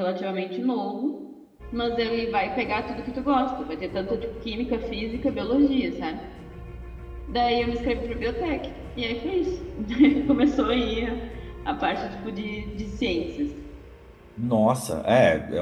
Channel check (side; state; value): both; identical; correlation 1.00